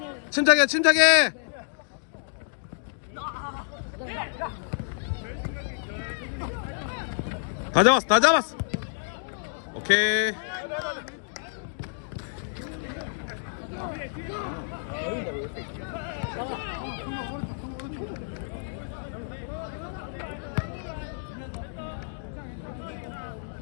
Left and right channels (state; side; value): silent; right; digital silence